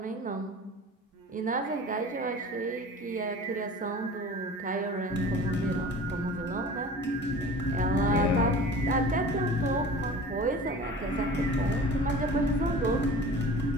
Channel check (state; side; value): normal; both; correlation 0.40